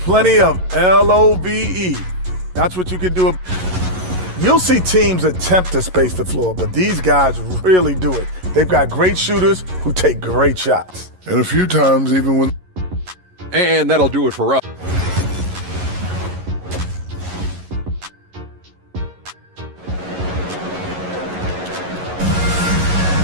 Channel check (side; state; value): left; late; 11 ms